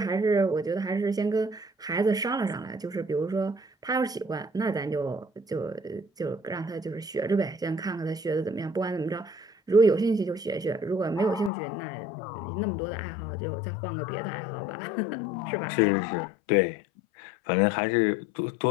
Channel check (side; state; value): right; drops out; at 11.5 s